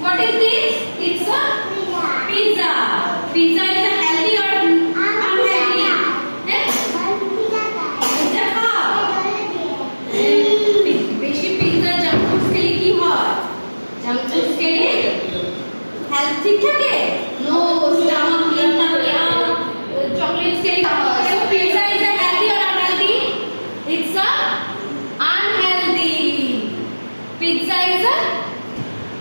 What is this? It's a pizza. Pizza is a healthy or unhealthy? Pizza খাও বেশি pizza junk food খেলে কি হয়? Junk food খেলে হেলথ ঠিক থাকে? নো, স্টমাক ক্লিন থাকে আর চকলেটস খেলে কি হয়? So pizza is a healthy or unhealthy? It's a unhealthy. Pizza is a,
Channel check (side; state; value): both; inverted; correlation -1.00